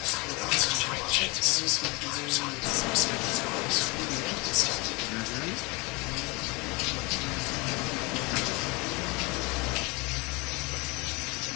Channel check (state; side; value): quieter; right; 27.2 dB